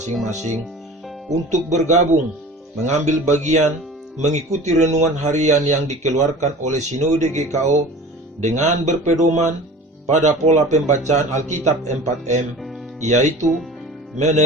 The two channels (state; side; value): normal; both; correlation 0.40